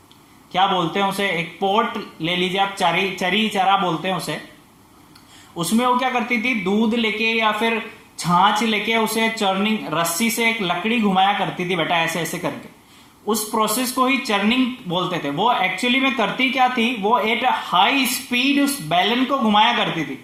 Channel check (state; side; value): identical; both; correlation 1.00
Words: क्या बोलते हैं उसे, एक पोट ले लीजिए आप, चरी चरा बोलते हैं उसे। उसमें वो क्या करती थी, दूध लेके या फिर छाछ लेके उसे चर्निंग, रस्सी से एक लकड़ी घुमाया करती थी बेटा, ऐसे ऐसे करके। उस प्रोसेस को ही चर्निंग बोलते थे। वो एक्चुअली में करती क्या थी, वो एट हाई स्पीड उस बैलन को घुमाया करती थी।